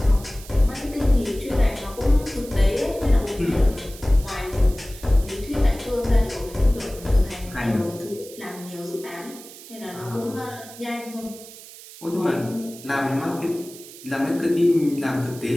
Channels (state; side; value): noise; right; hiss, 17 dB below the sound